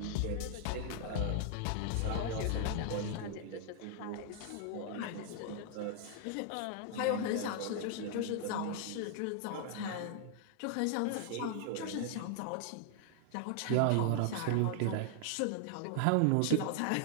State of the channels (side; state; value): both; different; correlation 0.00